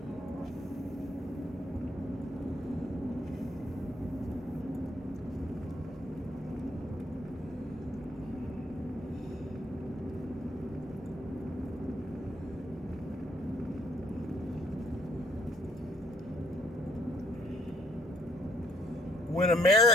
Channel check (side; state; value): both; normal; correlation 0.67